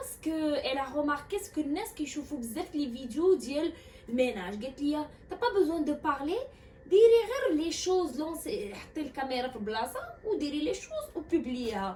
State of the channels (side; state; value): both; identical; correlation 1.00